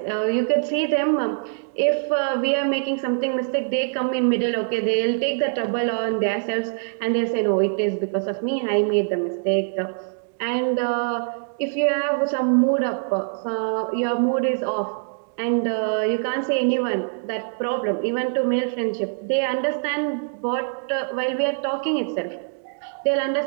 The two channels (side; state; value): left; silent; digital silence